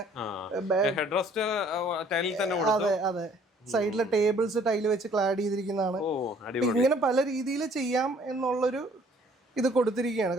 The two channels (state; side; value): normal; both; correlation 0.58